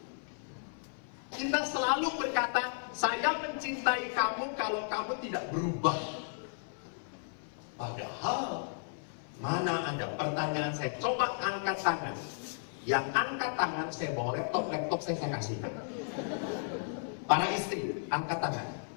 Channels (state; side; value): silent; right; 55 dB below the other